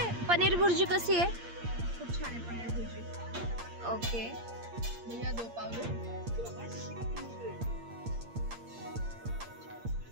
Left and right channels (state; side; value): late; left; 8.6 ms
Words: पनीर भुर्जी कशी आहे? खूप छान आहे पनीर भुर्जी. ओके भैया 2 पाव दो.